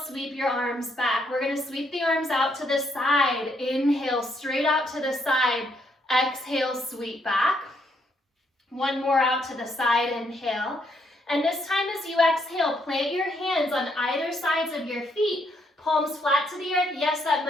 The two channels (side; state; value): both; normal; correlation 0.74